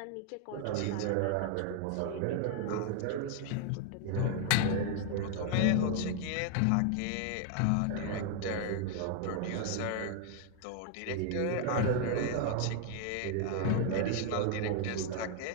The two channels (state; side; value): different; both; correlation 0.00